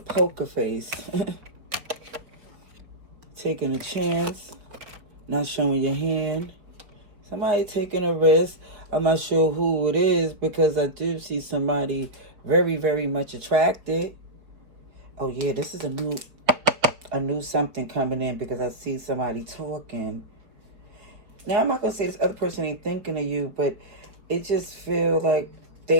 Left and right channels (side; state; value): left; late; 4.5 ms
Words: face. Taking a chance. Not showing your hand. Somebody taking a risk. I'm not sure who it is because I do see somebody very, very much attracted. Oh yeah, this is a new something coming in because I see somebody talking. Now I'm not gonna say this other person ain't thinking of you, but it just feels like